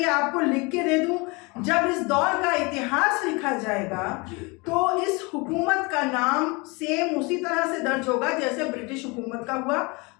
आपको लिख के दे दूं, जब इस दौर का इतिहास लिखा जाएगा तो इस हुकूमत का नाम सेम उसी तरह से दर्ज होगा जैसे ब्रिटिश हुकूमत का हुआ,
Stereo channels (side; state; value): right; quieter; 27.4 dB